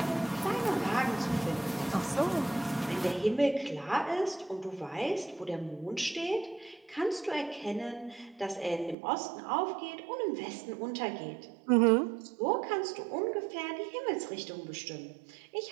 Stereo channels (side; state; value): left; drops out; at 9.0 s